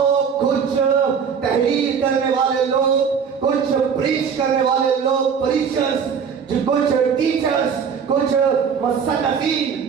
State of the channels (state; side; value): quieter; left; 6.7 dB